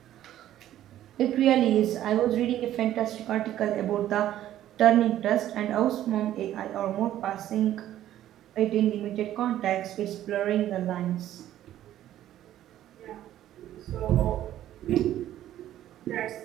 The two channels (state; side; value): quieter; left; 12.5 dB